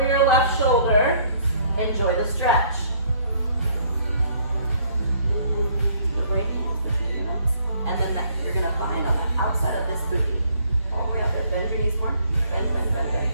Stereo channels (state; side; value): inverted; both; correlation -0.62